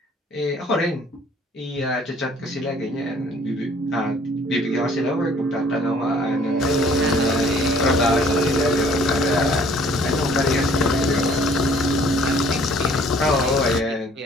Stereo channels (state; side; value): normal; both; correlation 0.57